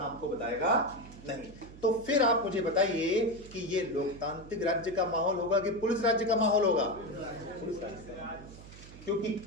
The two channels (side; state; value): right; noise; hum, 17 dB below the sound